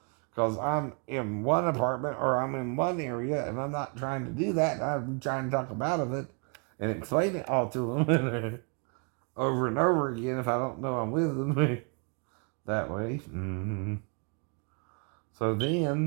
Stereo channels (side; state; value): left; quieter; 37.5 dB